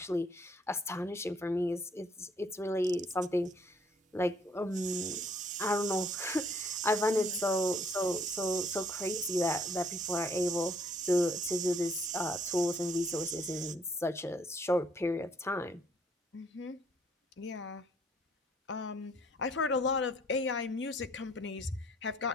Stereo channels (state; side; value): normal; both; correlation 0.64